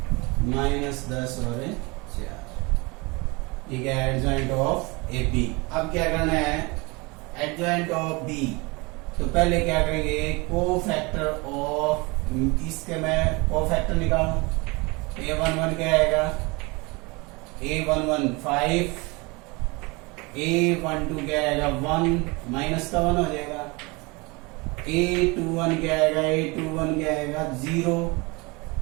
-10 और 4। ठीक है, एडजॉइंट ऑफ ए बी। अब क्या करना है, एडजॉइंट ऑफ बी। तो पहले क्या करेंगे, कोफैक्टर ऑफ, इसके मैं कोफैक्टर निकालूं। A11 क्या आएगा, A11 5, A12 क्या आएगा 1, माइनस का 1 हो जाएगा। A21 क्या आएगा, A21 क्या आएगा 0,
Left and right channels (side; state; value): left; quieter; 26.4 dB